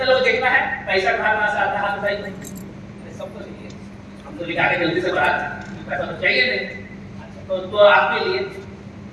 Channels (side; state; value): both; identical; correlation 1.00